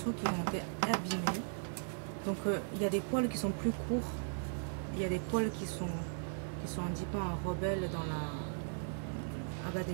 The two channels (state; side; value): silent; left; digital silence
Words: qui ont été abîmés. Donc il y a des poils qui sont plus courts, il y a des poils qui sont un petit peu en rebelle dans la... Ah bah